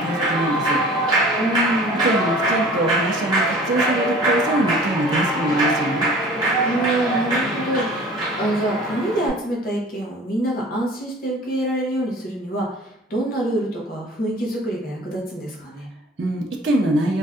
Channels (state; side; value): normal; both; correlation 0.46